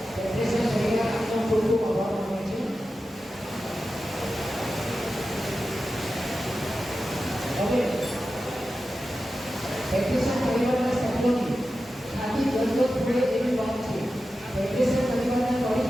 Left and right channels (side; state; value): both; normal; correlation 0.92